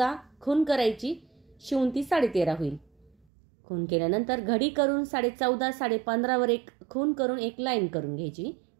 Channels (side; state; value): left; drops out; at 3.2 s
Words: खून करायची, शिवून ती 13.5 होईल. खून केल्यानंतर घडी करून 14.5 15.5 वर एक खून करून एक लाईन करून घ्यायची.